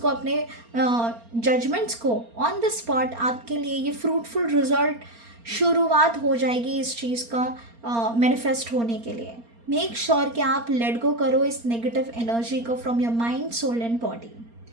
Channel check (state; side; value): late; left; 4.3 ms